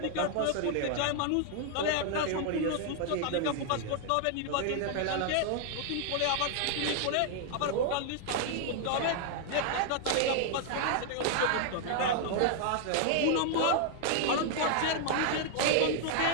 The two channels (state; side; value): different; both; correlation 0.00